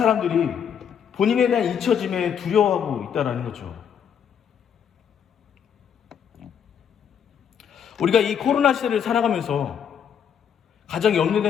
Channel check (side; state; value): right; quieter; 8.1 dB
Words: 본인에 대한 잊혀짐에 두려워하고 있다는 거죠. 우리가 이 코로나 시대를 살아가면서 가장